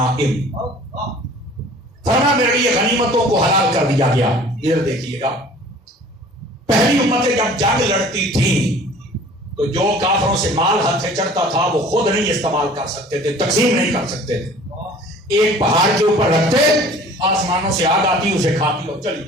فرما میرے لیے غنیمتوں کو حلال کر دیا گیا. ادھر دیکھیے گا پہلی امتیں جب جنگ لڑتی تھیں تو جو کافروں سے مال ہاتھ سے چڑھتا تھا وہ خود نہیں استعمال کر سکتے تھے تقسیم نہیں کر سکتے تھے. ایک پہاڑ کے اوپر رکھتے آسمانوں سے آگ آتی اسے کھاتی اور چلی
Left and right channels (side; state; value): both; normal; correlation 0.48